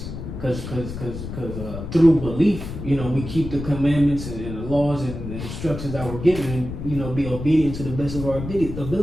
cause through belief, you know, we keep the commandments and the laws and the instructions that we're given, and, you know, be obedient to the best of our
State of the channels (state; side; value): noise; left; rumble, 8 dB below the sound